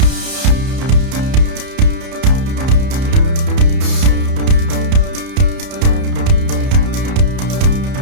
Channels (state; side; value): late; left; 31 ms